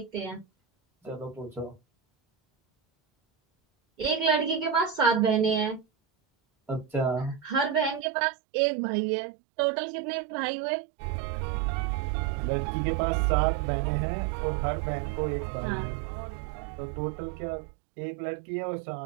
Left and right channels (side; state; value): left; drops out; at 8.1 s